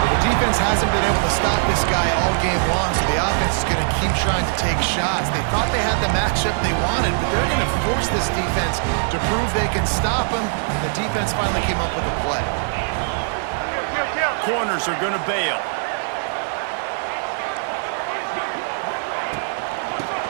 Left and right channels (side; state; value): left; silent; digital silence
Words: the defense hasn't been able to stop this guy all game long, so the offense is going to keep trying to take shots. They thought they had the matchup they wanted, but they're going to force this defense to prove they can stop him. The defense finally came up with a play. Corners are going to bail.